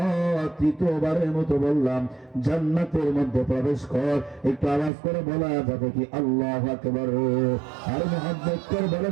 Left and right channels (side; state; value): left; drops out; at 4.9 s